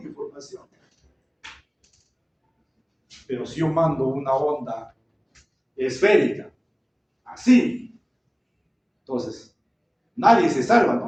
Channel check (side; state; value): both; identical; correlation 1.00